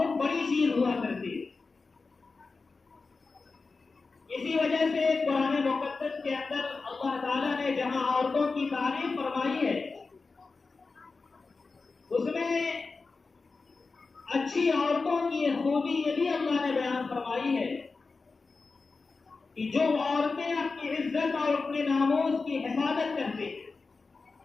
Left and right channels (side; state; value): right; quieter; 4.2 dB